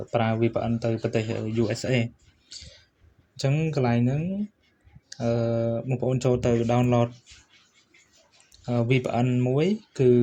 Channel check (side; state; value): both; identical; correlation 1.00